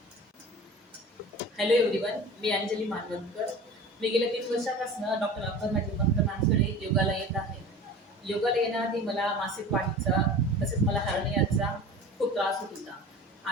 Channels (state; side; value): normal; both; correlation 0.38